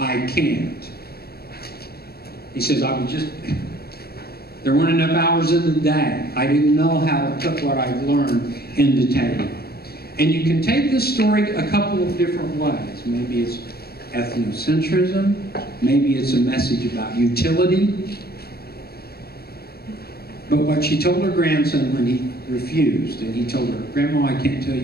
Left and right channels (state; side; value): late; right; 0.46 ms